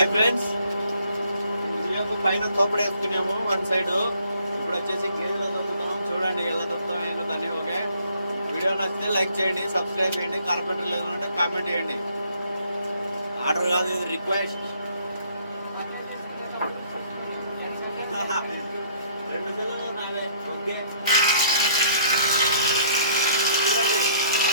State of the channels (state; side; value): inverted; both; correlation -0.61